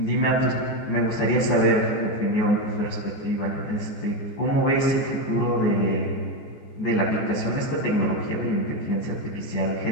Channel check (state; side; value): late; right; 14 ms